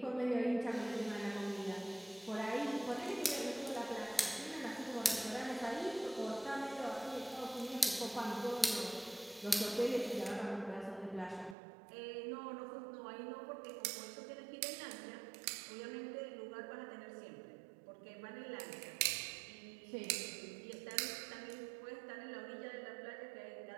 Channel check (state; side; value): drops out; left; at 11.6 s